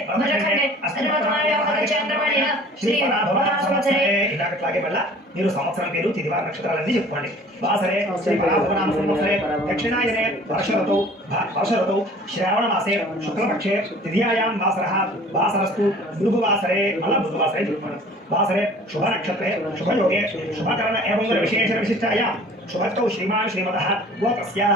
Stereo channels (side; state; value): both; normal; correlation 0.48